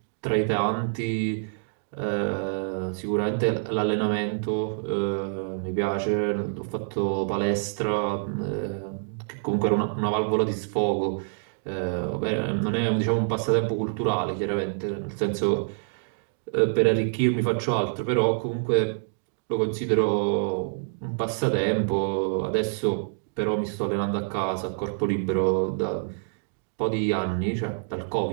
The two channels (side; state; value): left; silent; digital silence